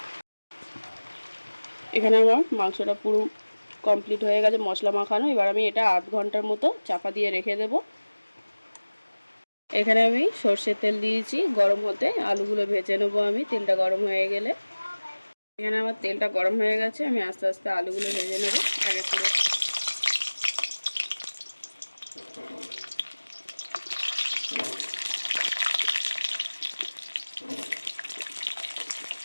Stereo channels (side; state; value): both; inverted; correlation -1.00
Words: এখানে আমার মাংসটা পুরো কমপ্লিট হয়ে গেছে মশলা মাখানো। এবার আমি এটা আধ ঘন্টার মতো চাপা দিয়ে রেখে দেব। এখানে আমি সর্ষের তেল দিয়েছি গরম হতে, আলুগুলো ভেজে নেবো আমি তেলটা গরম হয়ে গেলে। এখানে আমার তেলটা গরম হয়ে গেছে, আমি আস্তে আস্তে আলুগুলো ভেজে নেব এক এক করে।